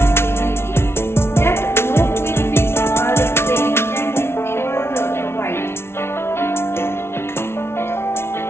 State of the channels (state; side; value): late; right; 0.12 ms